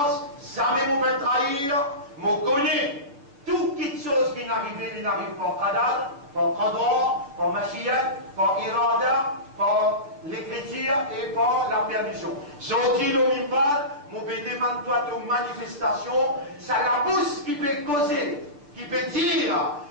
jamais mon peut trahir, mon connaît. Toute petite chose qui n'arrive, il n'arrive pas qadar, par qadar, par machiyat, par irada, par l'écriture et par la permission. Sorti le mimbal, mon peut demander toi de manifestation, ça la bouche qui peut causer, qui peut dire,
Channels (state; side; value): late; left; 6.9 ms